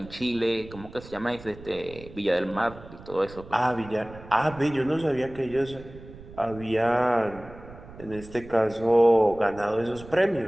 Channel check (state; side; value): noise; right; rumble, 18 dB below the sound